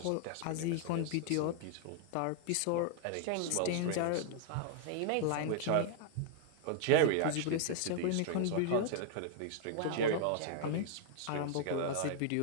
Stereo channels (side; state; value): both; different; correlation 0.00